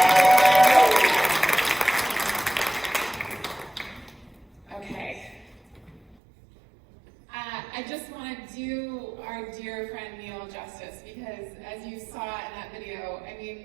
Okay. I just want to do our dear friend Neil justice because as you saw in that video, I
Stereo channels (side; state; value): left; drops out; at 6.2 s